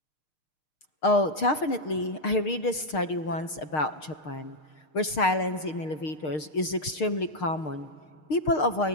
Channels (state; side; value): late; right; 6.5 ms